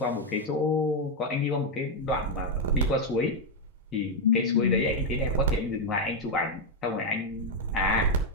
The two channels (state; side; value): normal; both; correlation 0.02